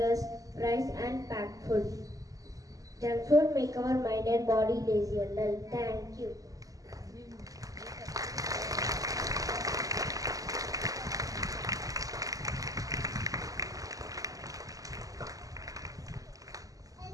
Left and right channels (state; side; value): late; left; 0.17 ms